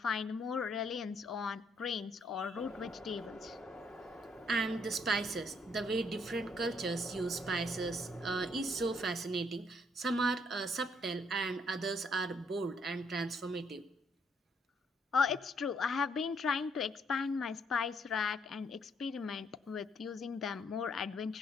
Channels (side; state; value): both; normal; correlation 0.70